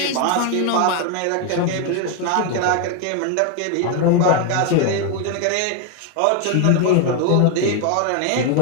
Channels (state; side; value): different; both; correlation 0.01